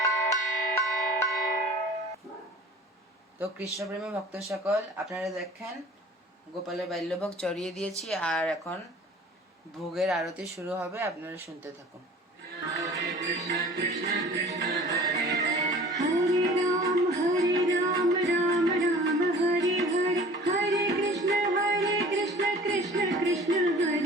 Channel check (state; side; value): normal; both; correlation 0.45